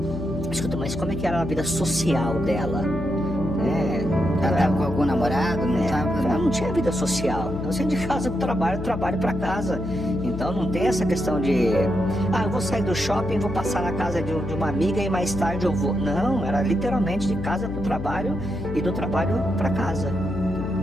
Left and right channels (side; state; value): left; noise; hum, 8 dB below the sound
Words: escuta, mas como é que era a vida social dela? Ela estava com algum namorado? Ela não tinha vida social. Ela saía de casa para o trabalho para casa. Então não tem essa questão de eu vou sair do shopping, vou passar na casa de uma amiga e mais tarde eu vou. Não, era literalmente de casa para o trabalho e do trabalho para casa.